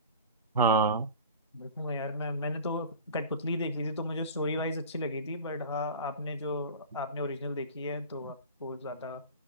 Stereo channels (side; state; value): both; inverted; correlation -0.35